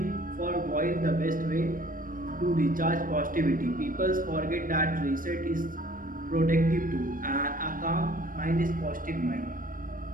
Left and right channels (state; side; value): late; left; 0.40 ms